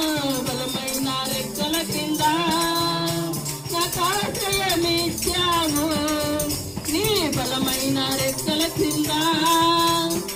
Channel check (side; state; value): both; identical; correlation 1.00